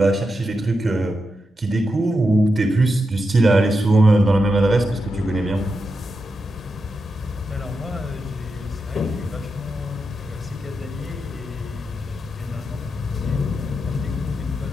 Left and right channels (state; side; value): normal; both; correlation 0.87